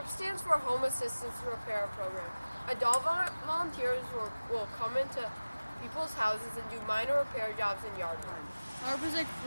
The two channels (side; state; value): both; inverted; correlation -0.99